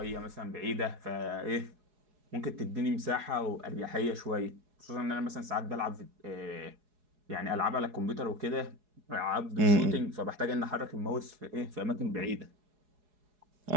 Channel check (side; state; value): left; late; 4.7 ms